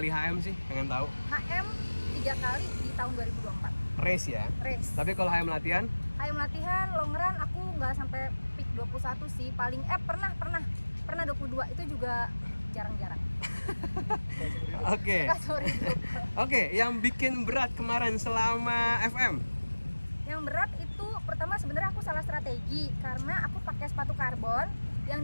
HM sih? Pengen tahu. HM 3 kali di tahun 2024. Race ya? Race. Tapi kalau HM latihan? HM latihan long run aku nggak sampai peak 21 sih, paling pernah 22, itu juga jarang-jarang. Oke. Oke, yang bikin berat kemarin selama FM? Yang berat itu pertama sebenarnya aku salah strategi karena aku pakai sepatu karbon, yang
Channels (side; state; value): both; inverted; correlation -1.00